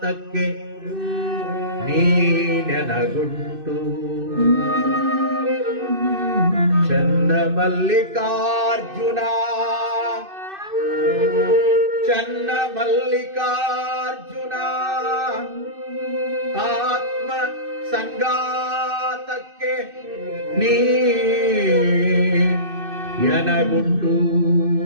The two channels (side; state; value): left; late; 2.6 ms